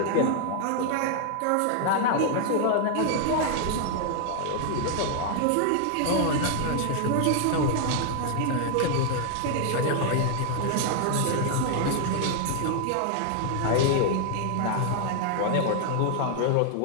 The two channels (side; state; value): both; different; correlation 0.00